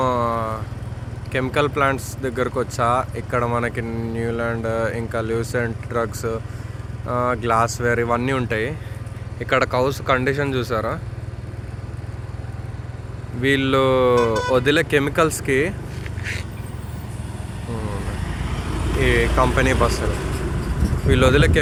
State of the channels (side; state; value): both; identical; correlation 1.00